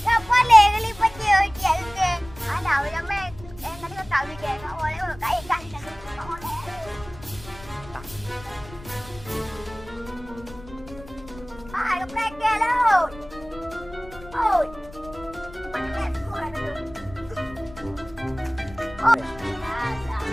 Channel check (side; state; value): left; noise; rumble, 18 dB below the sound